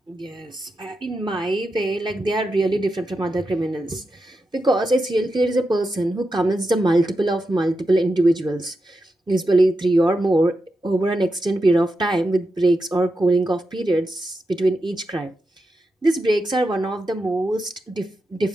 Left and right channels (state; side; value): normal; both; correlation 0.88